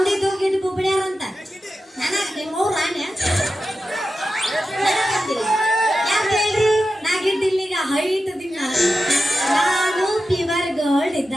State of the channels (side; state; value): both; normal; correlation 0.91